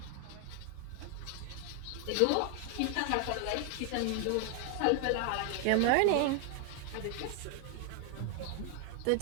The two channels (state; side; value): different; both; correlation 0.00